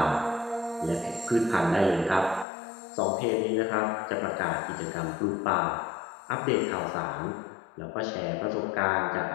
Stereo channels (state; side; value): drops out; right; at 2.5 s